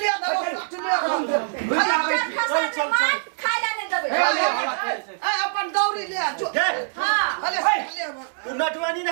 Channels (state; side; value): silent; left; 63 dB below the other